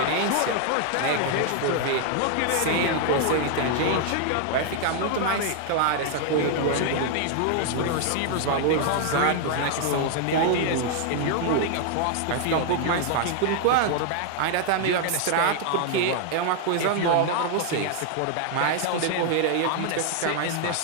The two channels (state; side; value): different; both; correlation 0.00